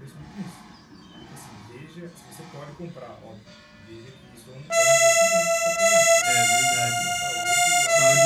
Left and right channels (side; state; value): both; identical; correlation 1.00